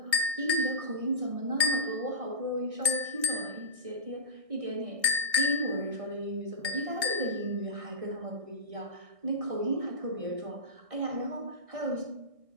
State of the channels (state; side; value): late; left; 1.6 ms